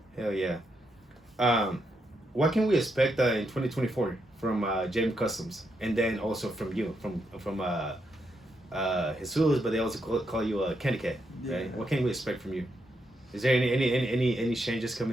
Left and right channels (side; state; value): both; normal; correlation 0.81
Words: Hell yeah. What can we expect in 2024 from JM Customs, and then also from you, from Jesus, but they also call you Candy Cat, right? Yeah. What can we expect from you? Is there any changes